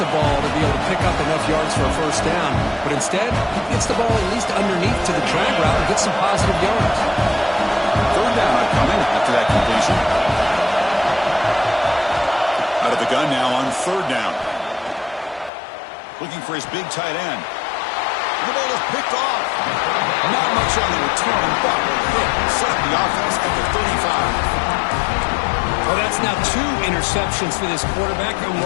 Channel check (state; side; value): drops out; right; at 15.5 s